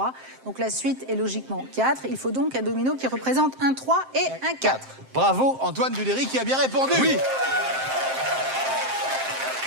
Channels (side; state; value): left; late; 7.6 ms